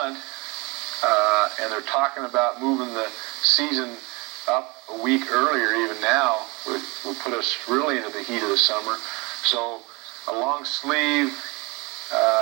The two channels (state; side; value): quieter; left; 26.5 dB